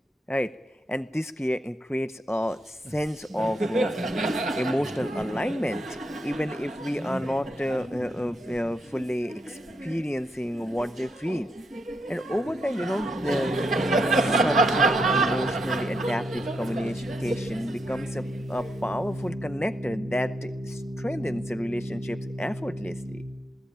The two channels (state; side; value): normal; both; correlation 0.80